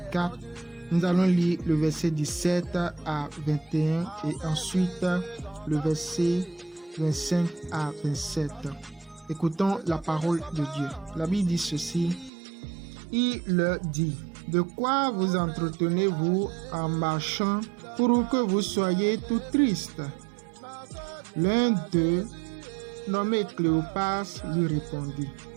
Nous allons lire le verset 17 à 21 et ensuite le verset 25 à 27. Écoutons la parole de Dieu. La Bible dit ceci. Il leur dit, de quoi vous entretenez-vous en marchant pour que vous soyez tout triste? L'un d'eux, nommé Cléopas, lui répondit,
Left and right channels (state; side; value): drops out; left; at 12.3 s